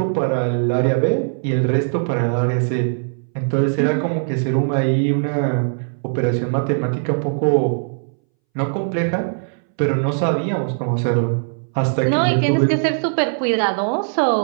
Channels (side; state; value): left; silent; 64 dB below the other